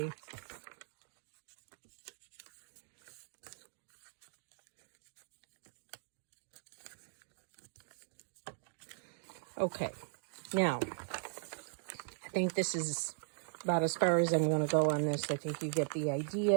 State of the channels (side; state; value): left; silent; digital silence